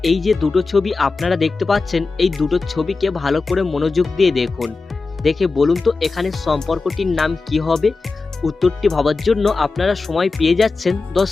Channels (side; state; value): right; quieter; 4.0 dB